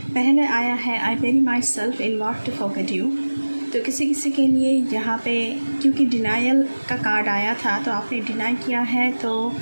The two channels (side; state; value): both; inverted; correlation -1.00